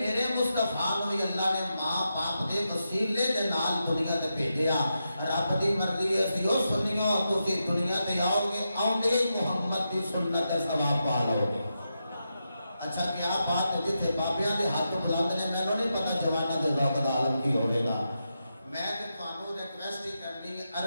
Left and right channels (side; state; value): both; inverted; correlation -0.87